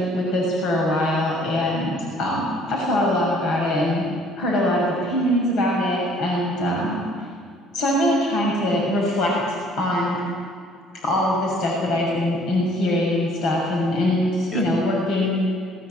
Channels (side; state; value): both; normal; correlation 0.58